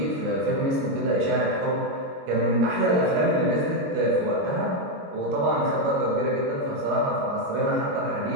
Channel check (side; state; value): left; late; 22 ms